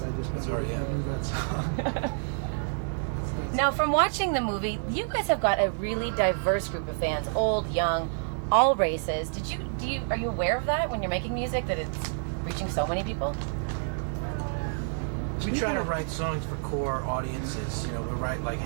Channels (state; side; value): silent; left; digital silence